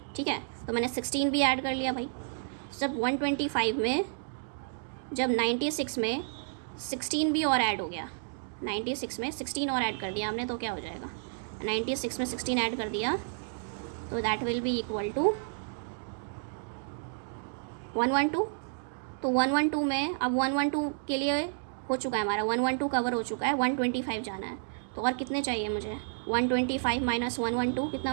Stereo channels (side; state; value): left; silent; digital silence